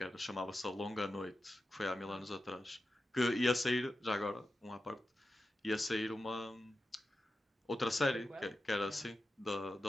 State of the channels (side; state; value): both; normal; correlation 0.91